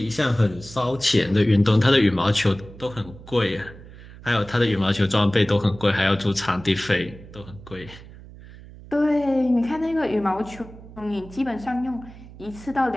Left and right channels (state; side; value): noise; right; hum, 18 dB below the sound